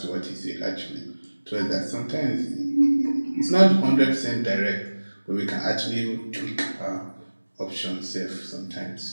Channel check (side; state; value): both; inverted; correlation -1.00